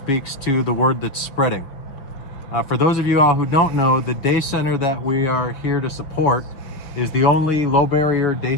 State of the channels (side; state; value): right; late; 5.7 ms